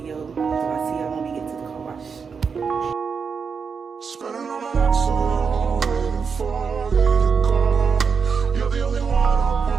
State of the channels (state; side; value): quieter; left; 5.8 dB